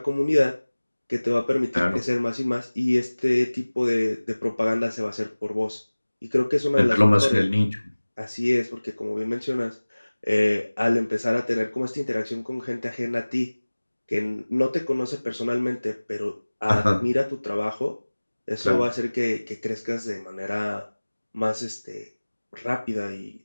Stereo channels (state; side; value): inverted; both; correlation -1.00